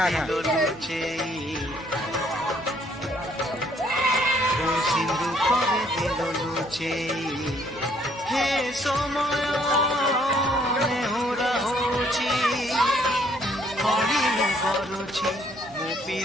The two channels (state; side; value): noise; right; hum, 25 dB below the sound